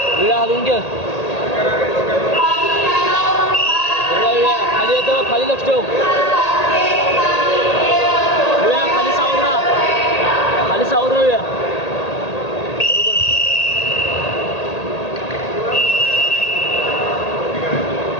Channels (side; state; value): right; late; 1.8 ms